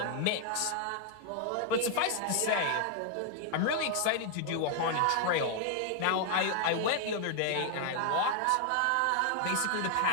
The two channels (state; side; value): different; both; correlation 0.00